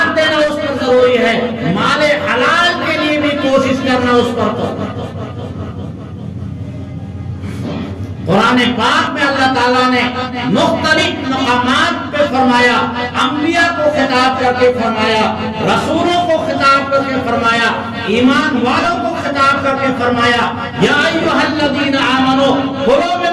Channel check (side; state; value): both; identical; correlation 1.00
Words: دینا اس پر ضروری ہے، مال حلال کے لیے بھی کوشش کرنا اس پر. قرآن پاک میں اللہ تعالیٰ نے مختلف مقامات پہ فرمایا، انبیاء کو خطاب کر کے فرمایا، رسولوں کو خطاب کر کے فرمایا، ایمان والوں کو خطاب کر کے فرمایا یا ایھا الذین آمنوا کلوا